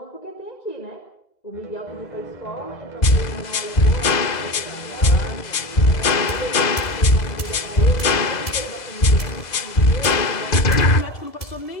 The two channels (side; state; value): right; late; 2.0 ms